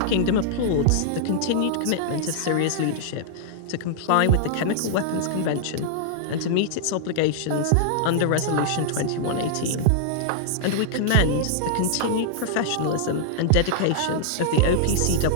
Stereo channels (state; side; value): different; both; correlation -0.01